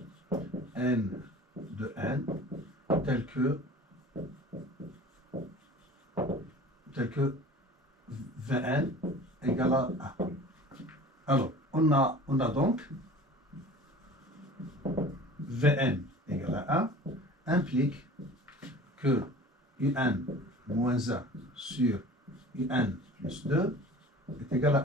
n de n tel que Vn égale à 1. Alors, on a donc Vn égale à 1 implique que Un moins 1 sur Un plus 2 est égal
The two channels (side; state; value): both; normal; correlation 0.42